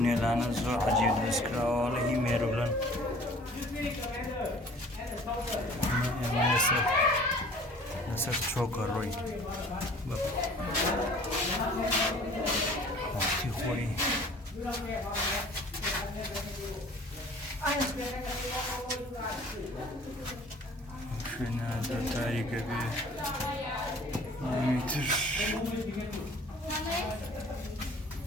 زۆر عەجیب دروستکراوە لە هی مێرولەن. ئێمە لەسەر چۆکە ڕۆی وەختی خۆی شوێنە زۆر تاریکە بێ. تر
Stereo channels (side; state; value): both; normal; correlation 0.49